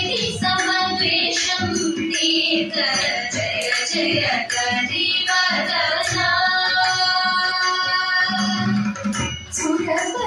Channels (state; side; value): identical; both; correlation 1.00